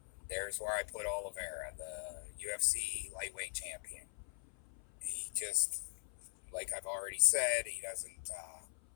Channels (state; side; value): silent; right; 50 dB below the other